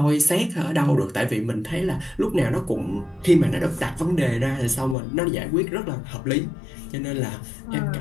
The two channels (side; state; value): right; drops out; at 5.0 s